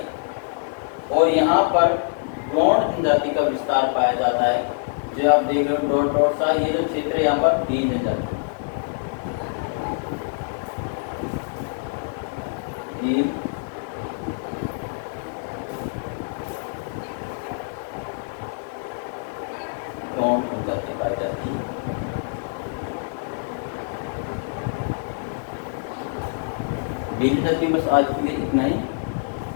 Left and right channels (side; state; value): right; silent; 60 dB below the other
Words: और यहाँ पर गोंड जनजाति का विस्तार पाया जाता है। जो आप देख रहे हो डॉट डॉट सा, ये जो क्षेत्र है यहाँ पर भील जनजाति, भील गोंड जनजाति पाई जाती है। बस आज के लिए इतना ही।